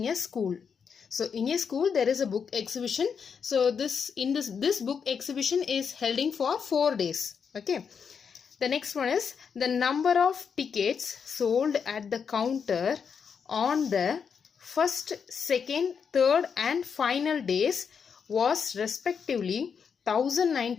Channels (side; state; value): right; quieter; 6.5 dB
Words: a school. So in a school there is a book exhibition. So this book exhibition is held for 4 days. Okay. The next one is the number of tickets sold at the counter on the first, second, third and final days was respectively